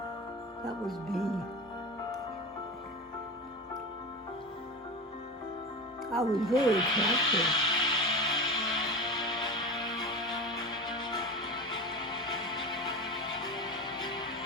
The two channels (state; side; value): normal; both; correlation 0.27